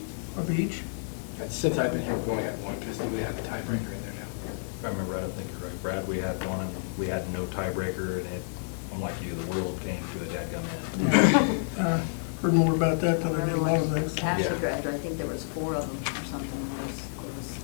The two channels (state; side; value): silent; right; digital silence